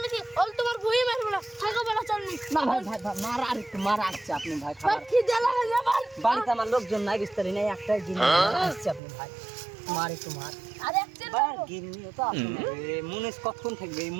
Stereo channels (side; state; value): left; drops out; at 9.0 s